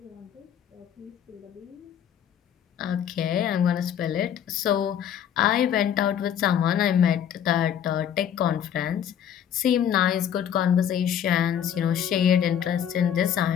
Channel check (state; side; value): quieter; right; 9.3 dB